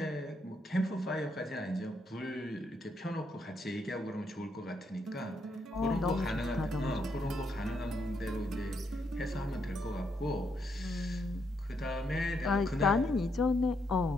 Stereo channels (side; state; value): both; normal; correlation 0.77